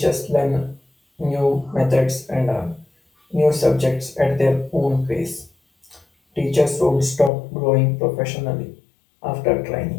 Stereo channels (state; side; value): drops out; right; at 7.3 s